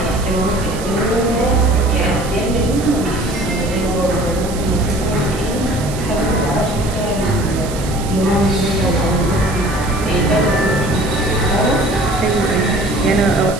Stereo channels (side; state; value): right; noise; hiss, 13 dB below the sound